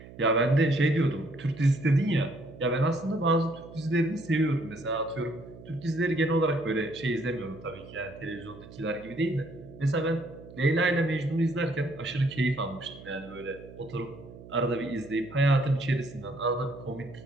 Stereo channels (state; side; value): noise; right; hum, 17 dB below the sound